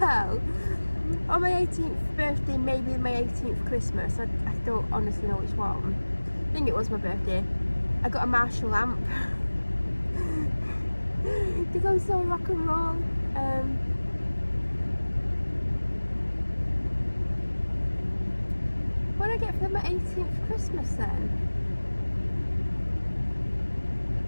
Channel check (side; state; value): both; inverted; correlation -1.00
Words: On my 18th birthday, maybe my 18th Christmas, I don't honestly know which one. I think it was my birthday. I got a Marshall lamp. Because I'm so rock and roll. What did I get for my 18th Christmas then?